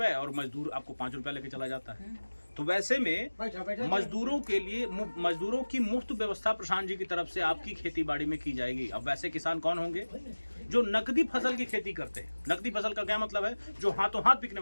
और मजदूर आपको 5 रुपए लेके चला जाता है। तो वैसे में मजदूरों के लिए मजदूरों की मुफ्त व्यवस्था प्रशांत जी की तरफ से आपकी खेती बाड़ी में की जाएगी। अब वैसे किसान कौन होंगे? जो नकदी फसल की खेती करते हैं। नकदी फसल का क्या मतलब है? जो हाथों हाथ बिकने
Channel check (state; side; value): inverted; both; correlation -1.00